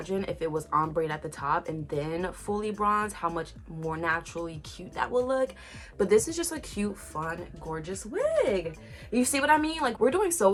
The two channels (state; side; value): identical; both; correlation 1.00